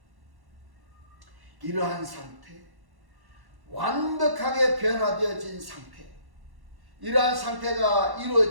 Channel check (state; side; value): late; left; 1.1 ms